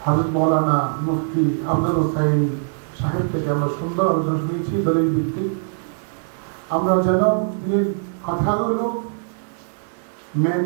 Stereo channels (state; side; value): silent; left; digital silence